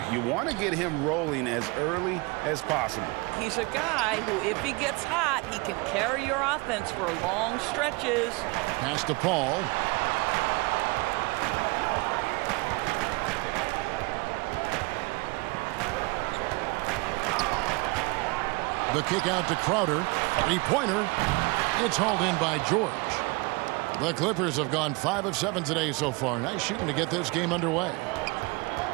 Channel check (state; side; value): quieter; left; 26.4 dB